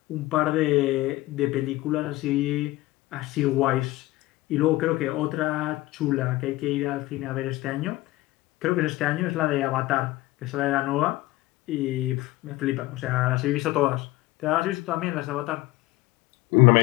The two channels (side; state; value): right; quieter; 18.5 dB